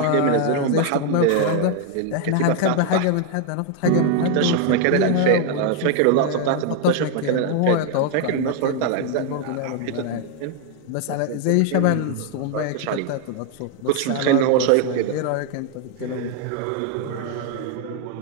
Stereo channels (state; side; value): different; both; correlation 0.01